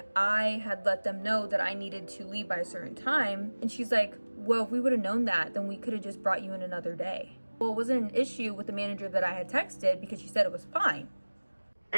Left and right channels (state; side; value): inverted; both; correlation -1.00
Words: I had let them know that I needed to leave by a certain time. And she's like, well, if we would have known that, then we could have just brought you in another day. Well, it wasn't an issue with the manager that I had texted because she said it was fine.